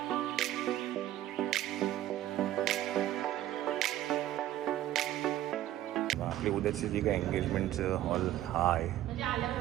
आपली उद्याची जी काही एंगेजमेंटचं हॉल हा आहे,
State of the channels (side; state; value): left; quieter; 13.4 dB